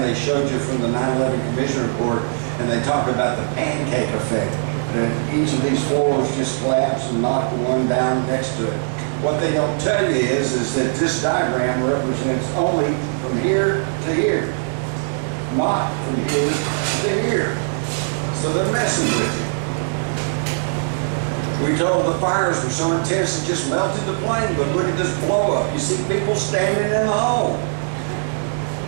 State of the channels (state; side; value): silent; left; digital silence